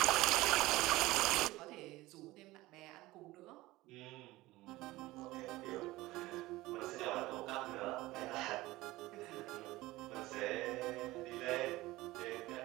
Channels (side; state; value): left; quieter; 18.7 dB